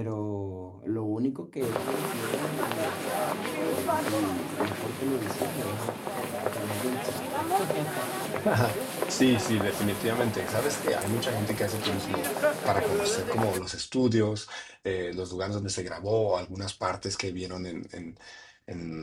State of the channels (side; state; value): both; identical; correlation 1.00